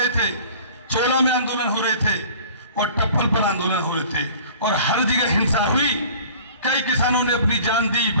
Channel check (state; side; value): inverted; both; correlation -0.46